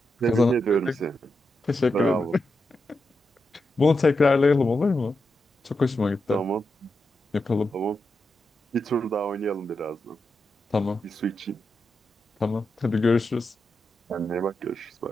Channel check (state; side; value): normal; both; correlation 0.87